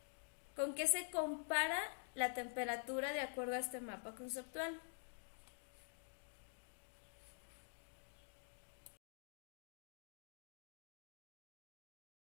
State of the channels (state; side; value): silent; right; digital silence